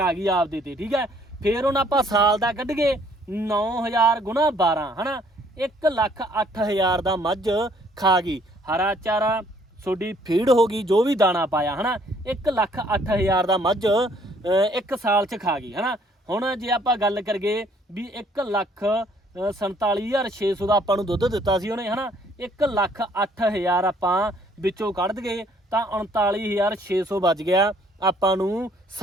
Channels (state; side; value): normal; both; correlation 0.62